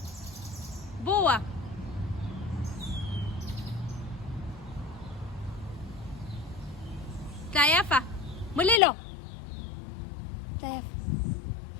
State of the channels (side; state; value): right; drops out; at 8.8 s